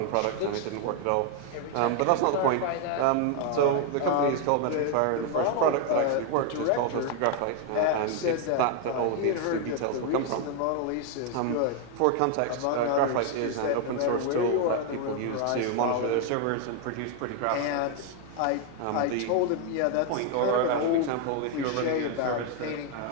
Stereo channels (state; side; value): different; both; correlation 0.01